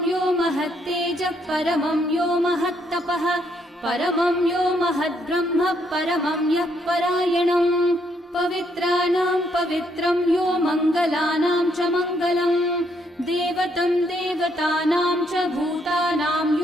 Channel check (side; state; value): both; normal; correlation 0.73